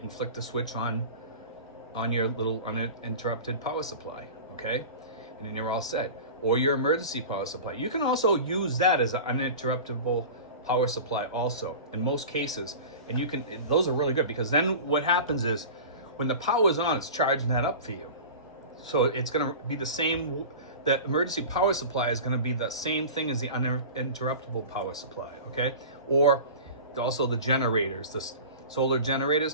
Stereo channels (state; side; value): inverted; both; correlation -0.35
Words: and flick the switch on on your little uninterrupted power supply, okay? And then you're all set. Or your emergency power supply. You can also use that as an uninterruptible power supply also, in most cases. And you can, those are really good, because then what happens is, when the power is on, it's charging that up for you. So it's gonna be the same, the emergency power supply is gonna be the same thing as the uninterruptible power supply, okay? Or also the generators, the solar